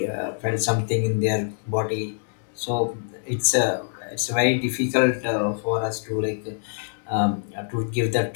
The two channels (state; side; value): silent; right; digital silence